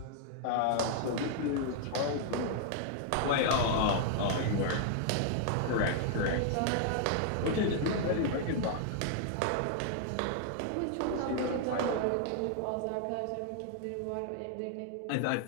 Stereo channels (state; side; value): different; both; correlation 0.00